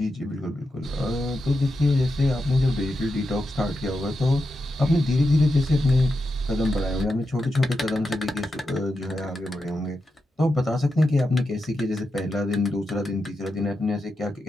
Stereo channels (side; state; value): both; normal; correlation 0.88